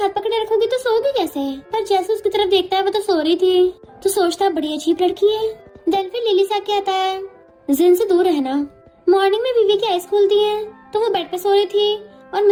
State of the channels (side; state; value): both; identical; correlation 1.00